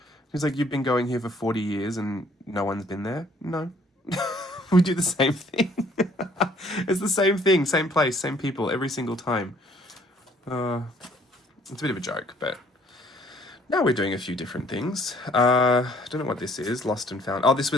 He's like, you've been going here for 40 years and no one's been there? No. We do the same thing. It's the same thing, same place, same people every single time. It's a bit of a joke, but now we're doing a few different things. I don't know what this is, Lost and Found. Oh, this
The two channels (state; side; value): normal; both; correlation 0.60